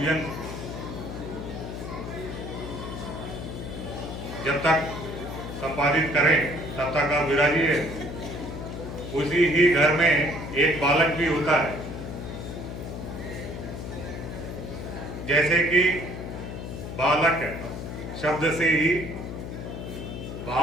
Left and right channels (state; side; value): noise; left; hum, 7 dB below the sound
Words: जब तक संपादित करें तब तक आप विराजिए। उसी ही घर में एक बालक भी होता है। जैसे कि बालक शब्द से ही